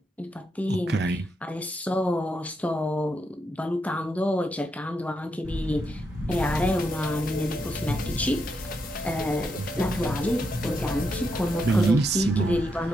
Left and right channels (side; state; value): both; normal; correlation 0.81